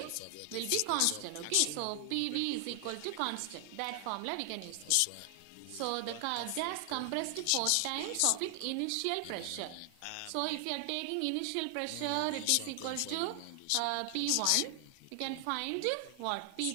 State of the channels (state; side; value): different; both; correlation 0.00